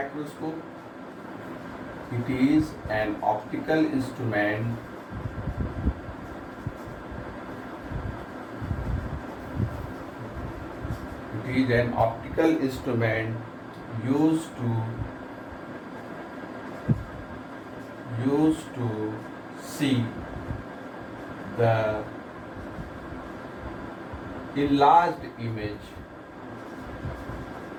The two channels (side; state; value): both; identical; correlation 1.00